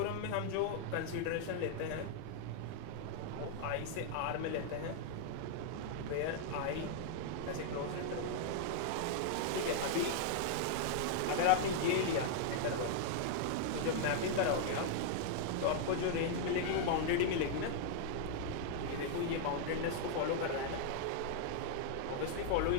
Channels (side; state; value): both; different; correlation 0.00